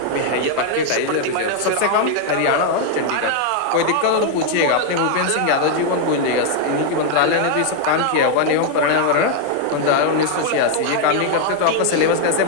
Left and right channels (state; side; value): different; both; correlation 0.00